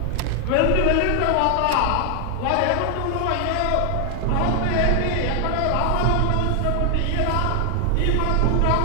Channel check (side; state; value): both; different; correlation 0.00